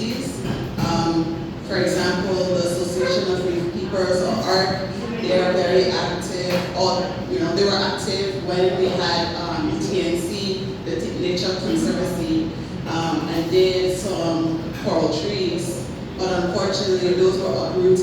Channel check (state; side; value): identical; both; correlation 1.00